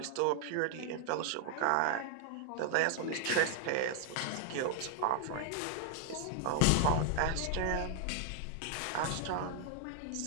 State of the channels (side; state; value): both; different; correlation 0.00